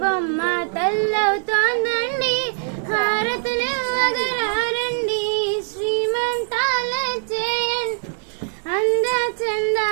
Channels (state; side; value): silent; left; 61 dB below the other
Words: బొమ్మ తల్లవుతోందండి, హారతులు ఇవ్వగరారండి, శ్రీమంతాలే చేయండి. అంద